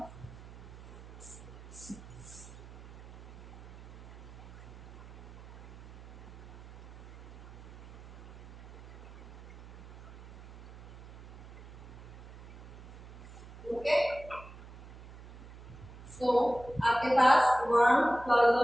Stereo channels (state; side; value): noise; right; hum, 16 dB below the sound